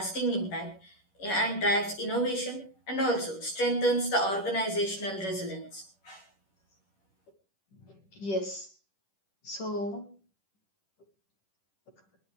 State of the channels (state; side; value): late; right; 10 ms